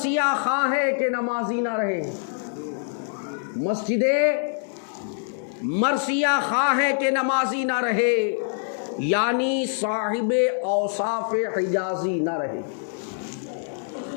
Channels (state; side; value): silent; right; digital silence